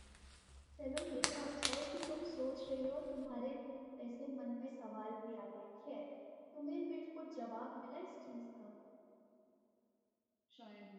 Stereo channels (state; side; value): identical; both; correlation 1.00